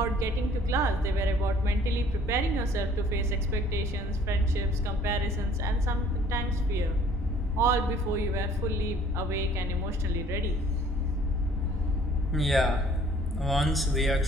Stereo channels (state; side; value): normal; both; correlation 0.56